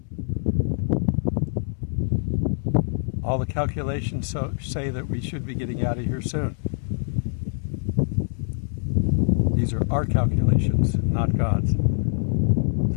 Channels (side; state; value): right; silent; 62 dB below the other